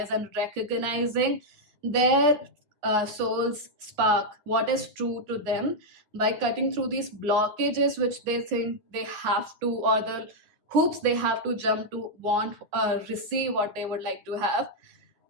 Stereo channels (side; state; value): left; late; 9.3 ms